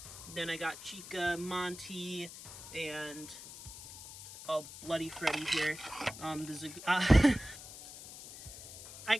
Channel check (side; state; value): left; noise; hiss, 14 dB below the sound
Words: Then I got Chica, Monty, and Bloody Freddy here. I